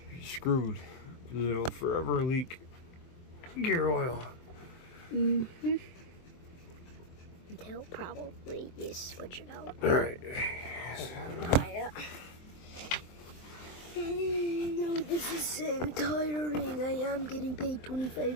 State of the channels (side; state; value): right; late; 23 ms